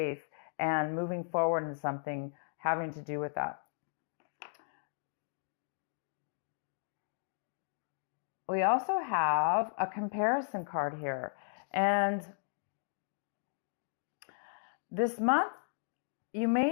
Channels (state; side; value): silent; right; digital silence